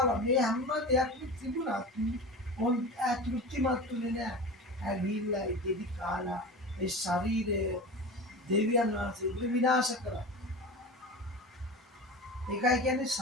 මේ හැම දෙයක්ම තිබුණා ඕන් තෘප්තිමත්ුනේ නෑ ඇවිල්ලා ඉතිරි කාලා ඒ ශරීරය දෙවියන් වහන්සේ විනාශ කරා ඒකයි කියන්නේ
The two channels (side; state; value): both; normal; correlation 0.30